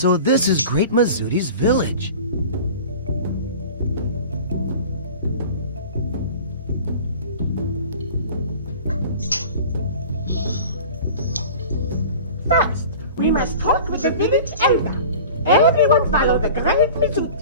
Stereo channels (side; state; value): both; inverted; correlation -0.40